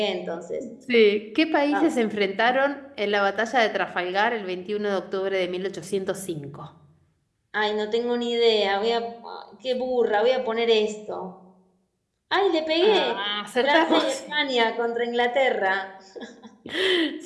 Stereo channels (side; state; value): both; identical; correlation 1.00